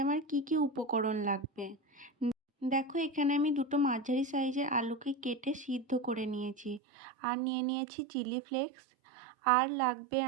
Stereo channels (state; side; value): drops out; left; at 6.8 s